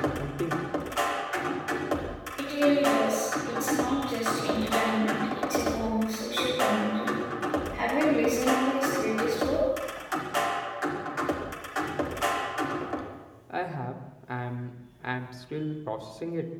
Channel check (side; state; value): both; identical; correlation 1.00